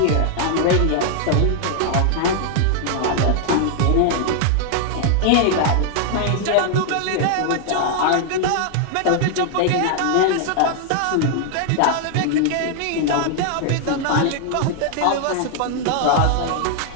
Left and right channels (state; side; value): different; both; correlation 0.00